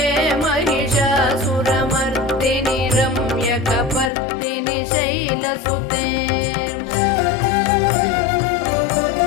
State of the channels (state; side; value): drops out; right; at 4.1 s